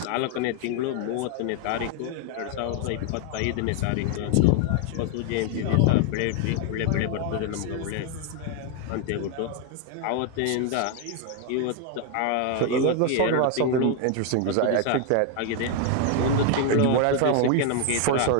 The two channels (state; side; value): different; both; correlation 0.00